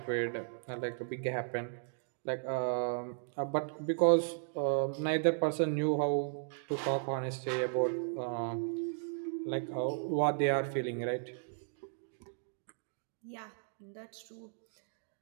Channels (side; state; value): left; silent; digital silence